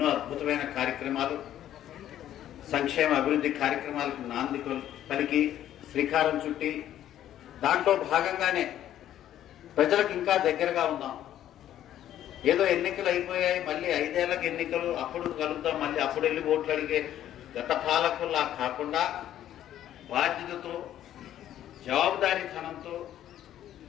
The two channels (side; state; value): right; quieter; 11.7 dB